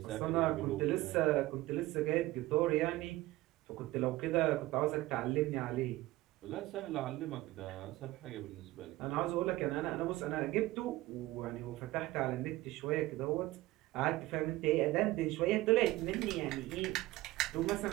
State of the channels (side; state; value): left; quieter; 17.9 dB